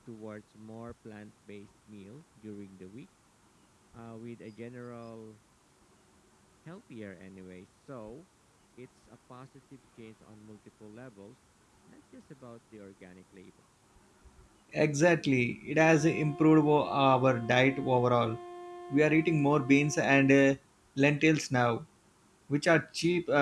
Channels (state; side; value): identical; both; correlation 1.00